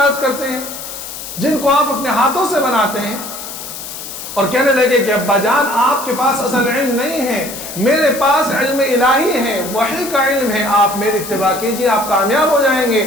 کرتے ہیں جن کو آپ اپنے ہاتھوں سے بناتے ہیں؟ اور کہنے لگے کہ ابا جان آپ کے پاس اصل علم نہیں ہے، میرے پاس علم الہی ہے، وحی کا علم ہے، آپ میری اتباع کیجئے، آپ کامیاب ہو جائیں گے،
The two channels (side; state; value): left; noise; hiss, 10 dB below the sound